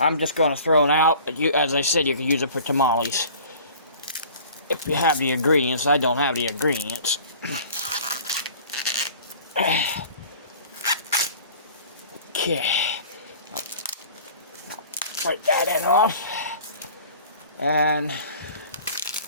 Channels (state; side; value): inverted; both; correlation -0.46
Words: just going to throw it out, but as I said, you can use it for tamales. If you have the ingredients. I don't have the ingredients. Okay. I'll break that end off. And